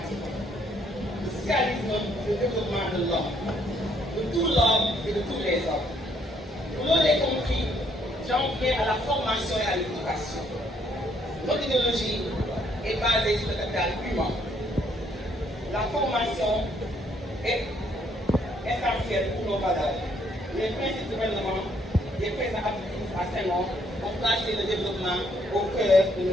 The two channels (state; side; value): normal; both; correlation 0.68